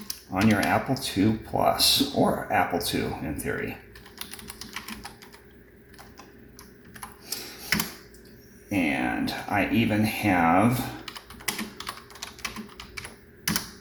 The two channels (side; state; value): both; identical; correlation 1.00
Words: on your Apple II Plus, or Apple II in theory. And I even have